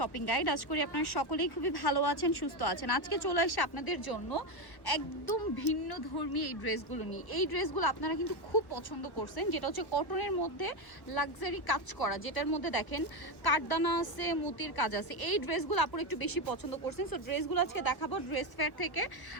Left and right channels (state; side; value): late; right; 1.2 ms